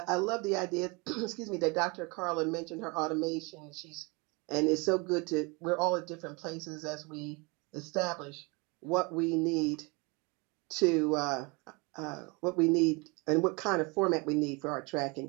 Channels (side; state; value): left; quieter; 28.6 dB